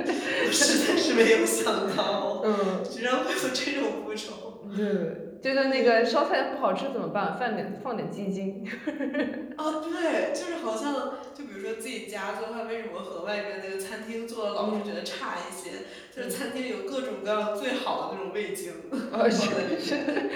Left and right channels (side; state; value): both; identical; correlation 1.00